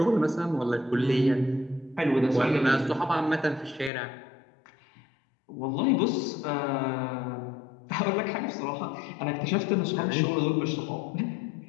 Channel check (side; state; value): right; drops out; at 3.9 s